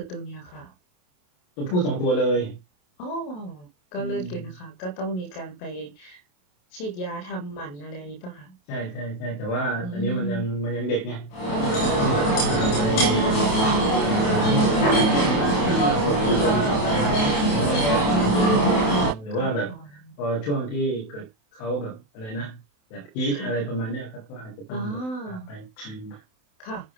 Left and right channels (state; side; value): late; right; 27 ms